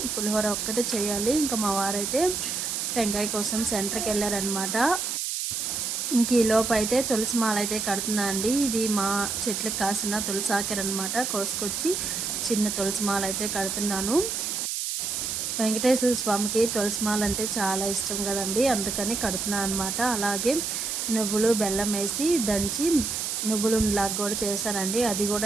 పులిహోర ఒక్కటే చేయాలి. ఇంకా మా వారైతే టెంకాయ కోసం సెంటర్కి వెళ్ళారనమాట. ఇంక ఈలోపు అయితే తులసి మాల అయితే కడుతున్నా అండి. ఇది మా చెట్లకు కాసిన తులసి ఆకెర అనమాట. కోసుకొచ్చి చిన్న తులసి మాల అయితే కడుతున్నాను. వెంకటేశ్వర స్వామికి తులసి మాల అంటే చాలా ఇష్టం కదండి, అందుకని కడుతున్నాను అనమాట. అలాగే నువ్వులు బెల్లం వేసి దంచి నువ్వులు లాగా కూడా చేశానండి. అది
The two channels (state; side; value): noise; right; hiss, 2 dB below the sound